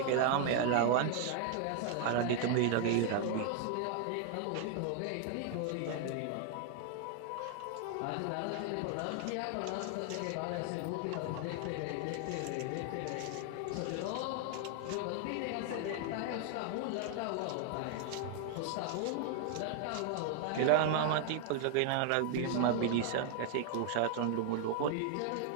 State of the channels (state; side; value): different; both; correlation 0.00